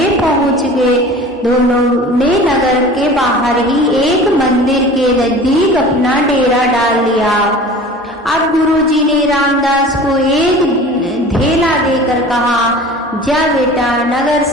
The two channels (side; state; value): both; normal; correlation 0.41